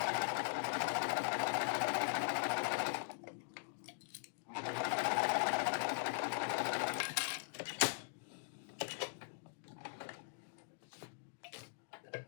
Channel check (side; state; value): right; silent; digital silence